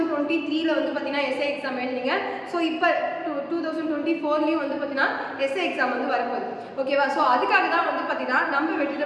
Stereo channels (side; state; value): both; identical; correlation 1.00